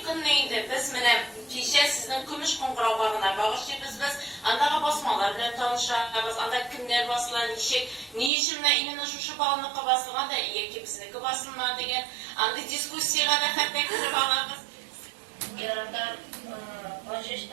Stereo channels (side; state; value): left; drops out; at 8.3 s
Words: günü indi biz mene kişiye sizin kümüş kongrabağına bağışlayız biz andağa basmalar bilen tanışırız, andağa kimler basılan işi, ne işimle inine şuşu bağlıqı basılgan da iyi ki bizniki basılma degen, anda diskussiyaya da hatta kırıp alırız. Yarandan